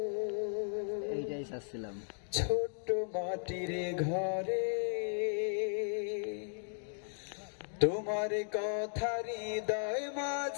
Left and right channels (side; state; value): right; silent; digital silence